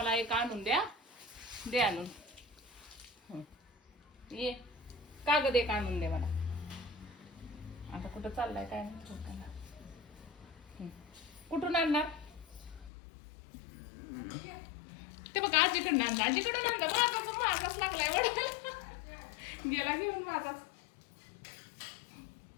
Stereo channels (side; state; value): right; drops out; at 12.9 s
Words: एक आणून द्या. दे आणून. ये कागद एक आणून दे मला. आता कुठं चाललाय काय म्हणतो त्याला. कुठून आणणार? ते बघा आजीकडनं आणता. आजीकडून आणता. माझाच लागलाय वडायला. गेला घेऊन माझाच.